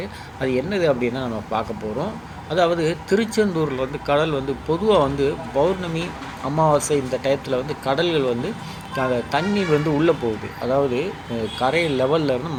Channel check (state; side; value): identical; both; correlation 1.00